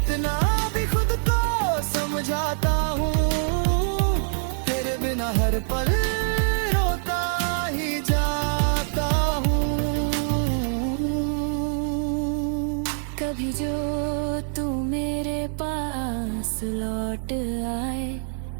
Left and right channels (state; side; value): silent; left; digital silence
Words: भी खुद को समझाता हूँ, तेरे बिना हर पल रोता ही जाता हूँ। कभी जो तू मेरे पास लौट आए